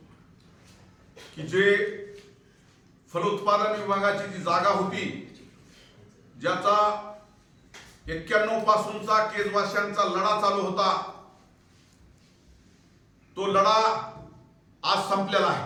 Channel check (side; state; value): both; identical; correlation 1.00